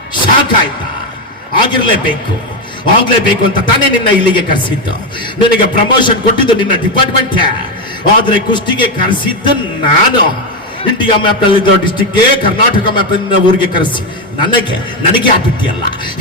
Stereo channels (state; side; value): normal; both; correlation 0.08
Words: ಶಾಕ್ ಆಯ್ತಾ? ಆಗಿರ್ಲೇಬೇಕು ಅಂತ ತಾನೇ ನಿನ್ನ ಇಲ್ಲಿಗೆ ಕರೆಸಿದ್ದು. ನಿನಗೆ ಪ್ರಮೋಷನ್ ಕೊಟ್ಟಿದ್ದು ನಿನ್ನ ಡಿಪಾರ್ಟ್ಮೆಂಟ್, ಆದ್ರೆ ಕುಸ್ತಿಗೆ ಕರೆಸಿದ್ದು ನಾನು. ಇಂಡಿಯಾ ಮ್ಯಾಪ್ ನಲ್ಲಿದ್ದ ಡಿಸ್ಟಿಕ್ಗೆ ಕರ್ನಾಟಕ ಮ್ಯಾಪ್ ಊರಿಗೆ ಕರೆಸಿ ನನಗೆ ಆಗ್ಬಿಟ್ಟಿಯಲ್ಲ.